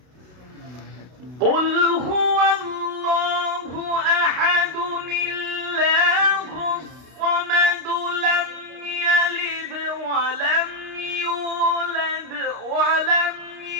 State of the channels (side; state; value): left; late; 32 ms